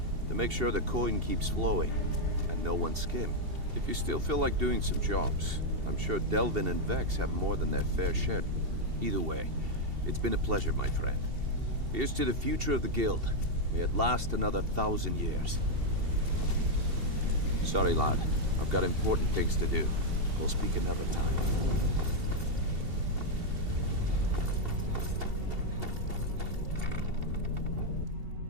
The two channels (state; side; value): late; left; 2.7 ms